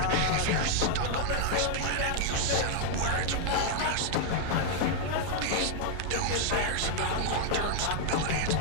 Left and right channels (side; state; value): both; different; correlation 0.00